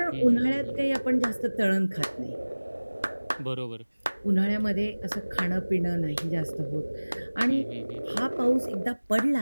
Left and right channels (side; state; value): both; inverted; correlation -1.00